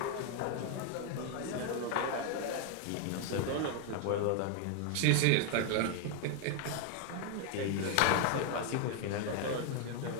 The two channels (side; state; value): both; different; correlation 0.01